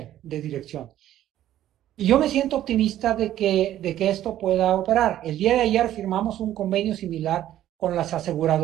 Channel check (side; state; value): left; quieter; 12.6 dB